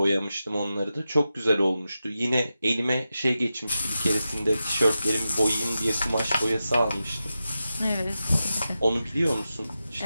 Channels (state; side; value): inverted; both; correlation -0.91